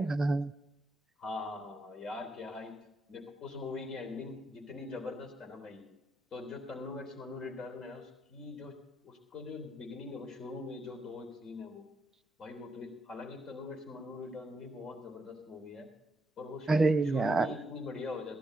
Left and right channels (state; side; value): normal; both; correlation 0.80